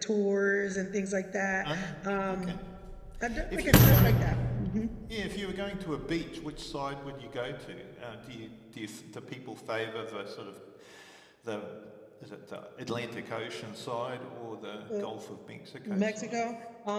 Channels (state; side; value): identical; both; correlation 1.00